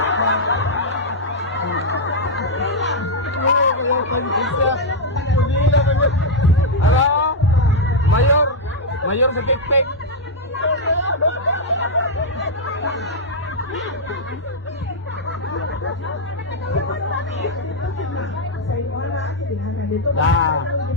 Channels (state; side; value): normal; both; correlation -0.03